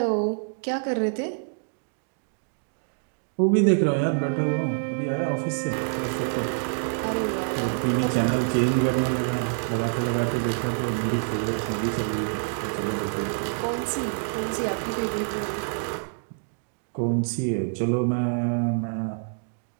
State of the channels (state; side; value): silent; left; digital silence